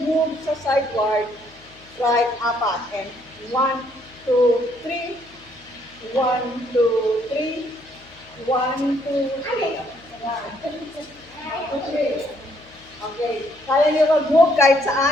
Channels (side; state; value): left; noise; hum, 26 dB below the sound